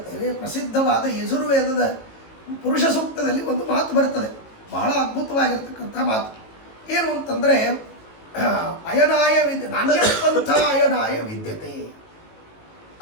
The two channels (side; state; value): right; late; 18 ms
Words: ಪ್ರಸಿದ್ಧವಾದ ಯಜುರ್ವೇದದ ಪುರುಷ ಸೂಕ್ತದಲ್ಲಿ ಒಂದು ಮಾತು ಬರ್ತದೆ, ಬಹಳ ಅದ್ಭುತವಾಗಿರ್ತಕ್ಕಂಥ ಮಾತು. ಏನು ಅಂತಂದರೆ ಅಯನಾಯ ನಾಣ್ಯಪಂಥ ಅಯನಾಯ ವಿದ್ಯತೆ